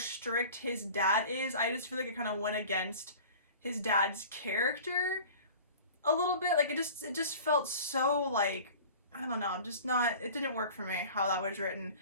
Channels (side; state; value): both; inverted; correlation -0.42